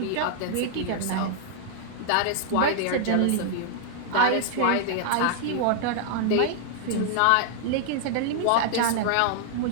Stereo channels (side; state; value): both; different; correlation 0.00